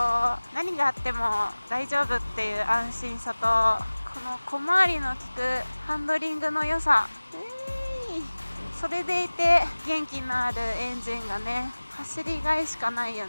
何があっても大丈夫っていう安心さと、この小回りの利くハンドリングの良さ、それでいて元気のあるエンジンがね、走りがいしかないよ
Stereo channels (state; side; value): inverted; both; correlation -1.00